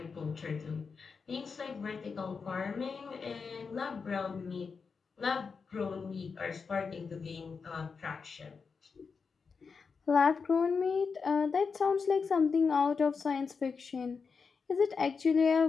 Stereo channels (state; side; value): quieter; right; 5.3 dB